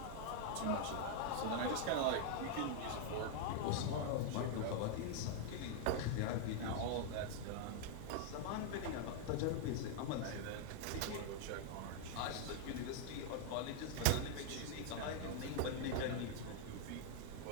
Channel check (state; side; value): different; both; correlation 0.00